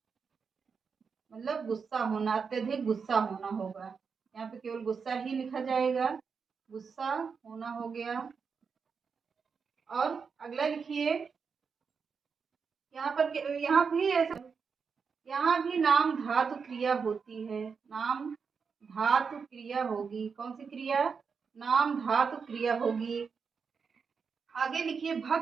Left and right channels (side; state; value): left; quieter; 5.7 dB